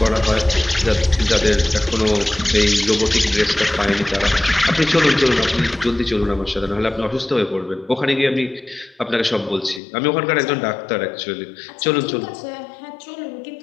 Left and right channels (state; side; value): drops out; right; at 9.8 s